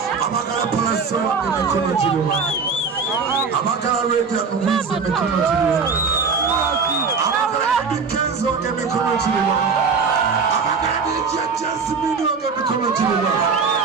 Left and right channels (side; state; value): left; quieter; 5.2 dB